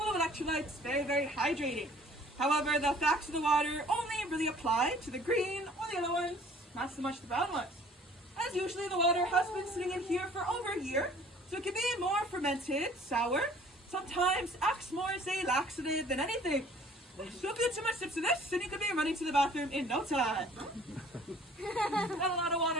of electrolytes, very, very hydrating. However, the facts of the water only really apply to the green or the other ones, not so much the brown ones. As usually, the water has been sitting in here for over a year, so it can be more fermented, sour, sometimes acts more as a laxative than anything. So if you do too much sips of this, then you could be running to the bathroom in no time. Got a lot of water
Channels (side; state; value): both; normal; correlation 0.53